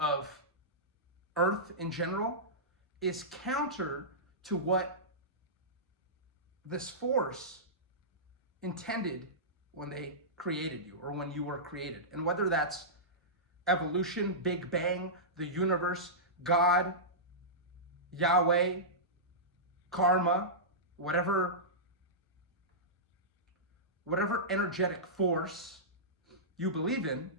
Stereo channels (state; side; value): normal; both; correlation -0.16